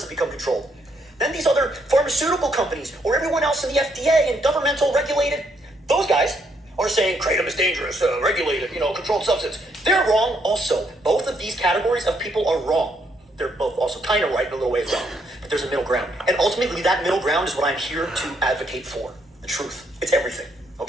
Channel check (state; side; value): normal; both; correlation 0.73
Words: become controlled. Then these other pharmaceutical companies or everyone else in the FDA and governmental regulated, those guys are saying Kratom is dangerous, regulated, controlled substance. They're wrong also. Both of these categories of people are wrong. They're both also kind of right in a little ways wrong. But there's a middle ground. And ultimately that middle ground is what I'm here to advocate for. The truth. It's everything.